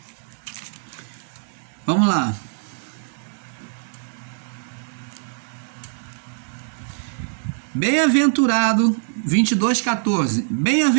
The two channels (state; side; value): silent; left; digital silence